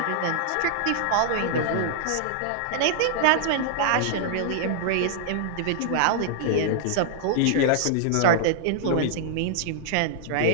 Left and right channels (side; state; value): both; different; correlation -0.01